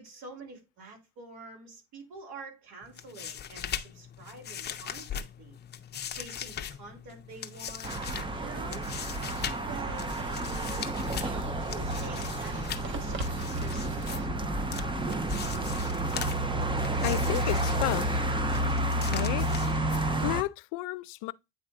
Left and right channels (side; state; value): both; normal; correlation 0.09